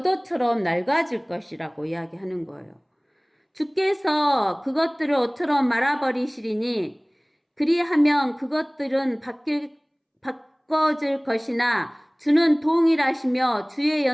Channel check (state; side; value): identical; both; correlation 1.00